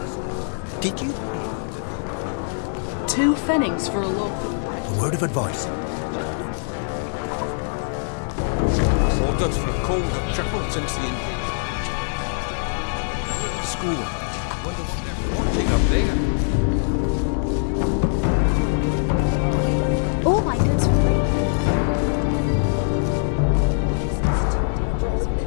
Did you? 2 pfennigs for a loaf. A word of advice. Orders for a cold have tripled since the invasion. School. Wonder what they're watching up there. All my goods for free.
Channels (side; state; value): right; silent; 64 dB below the other